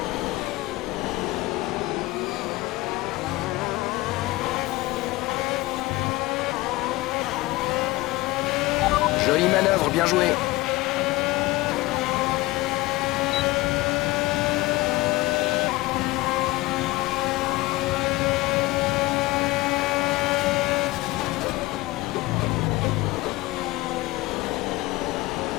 Jolie manœuvre, bien joué.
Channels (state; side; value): quieter; right; 20.1 dB